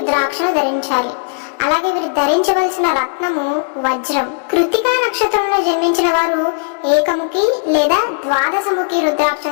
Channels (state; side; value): silent; right; digital silence